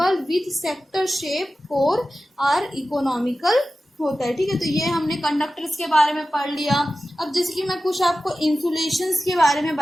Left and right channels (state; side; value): normal; both; correlation 0.94